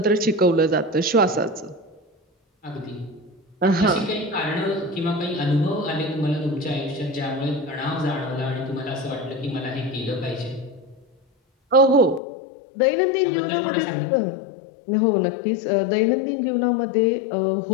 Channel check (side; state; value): right; drops out; at 12.2 s